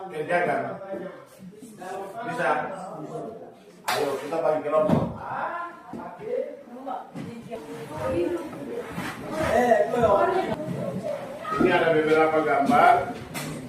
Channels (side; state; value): both; identical; correlation 1.00